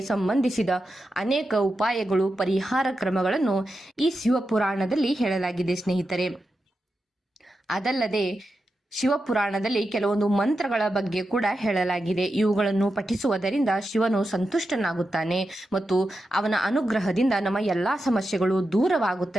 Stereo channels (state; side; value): normal; both; correlation 0.89